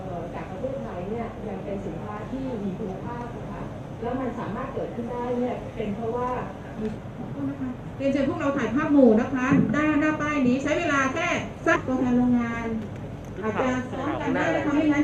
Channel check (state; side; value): identical; both; correlation 1.00